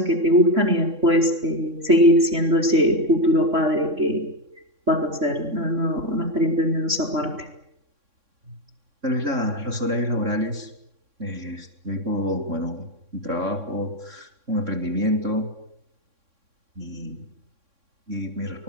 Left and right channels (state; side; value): late; left; 3.6 ms